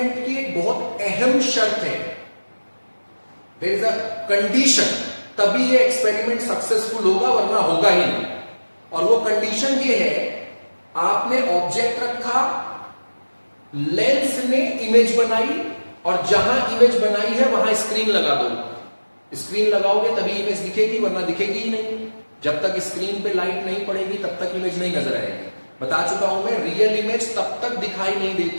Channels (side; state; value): both; inverted; correlation -1.00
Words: की एक बहुत अहम शर्त है, देयर इज अ कंडीशन, तभी ये एक्सपेरिमेंट सक्सेसफुल होगा वरना होगा ही नहीं। और वो कंडीशन ये है, आपने ऑब्जेक्ट रखा, लेंस ने इमेज बनाई और जहां इमेज बनाई है वहां स्क्रीन लगा दो। स्क्रीन लगाओगे तभी इमेज दिखेगी वरना दिखेगी ही नहीं। जब तक स्क्रीन पे लाइट नहीं पड़ेगी तब तक इमेज नहीं नजर आएगी। बता चुका हूं मैं, रियल इमेज तब तक दिखाई नहीं